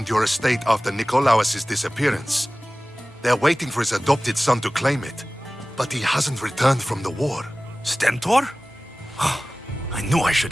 your estate after Nikolaos' disappearance. They're waiting for his adopted son to claim it. But he hasn't returned from the war. Stentor? I knew I should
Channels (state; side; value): normal; both; correlation 0.97